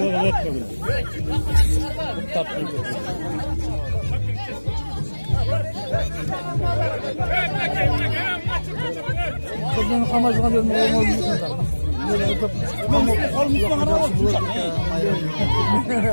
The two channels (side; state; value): both; inverted; correlation -1.00